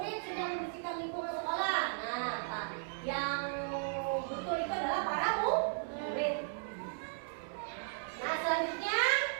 sedang membersihkan lingkungan sekolah. Nah, yang betul itu adalah para murid. Nah, selanjutnya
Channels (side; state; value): left; silent; digital silence